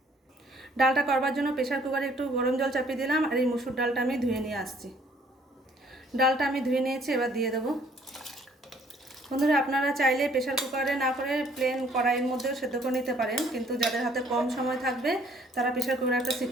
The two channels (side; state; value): both; normal; correlation 0.61